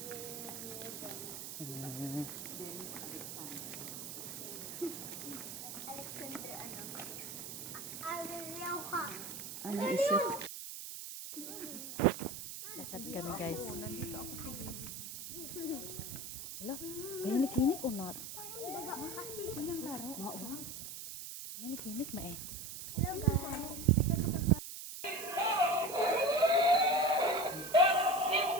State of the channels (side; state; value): right; noise; hiss, 8 dB below the sound